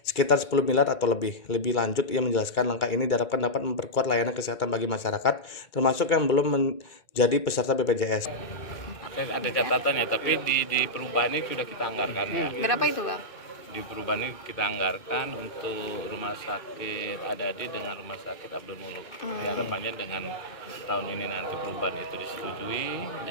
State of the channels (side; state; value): right; late; 2.2 ms